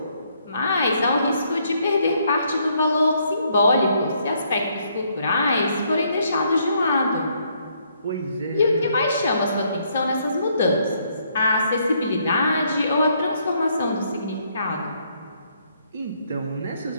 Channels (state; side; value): inverted; both; correlation -0.71